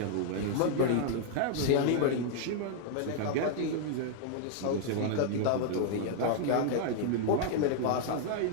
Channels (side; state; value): both; different; correlation -0.01